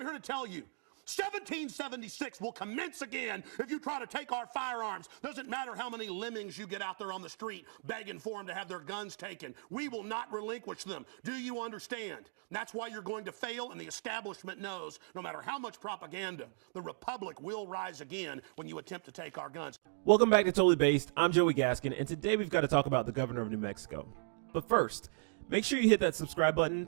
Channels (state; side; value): silent; left; digital silence